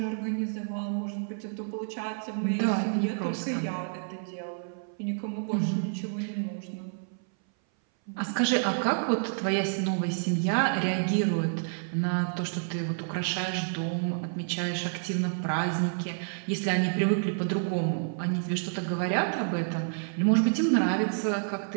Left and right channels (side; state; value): left; silent; 58 dB below the other